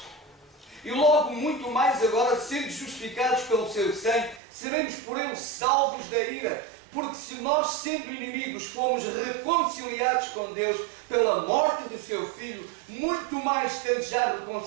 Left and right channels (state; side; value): drops out; left; at 4.4 s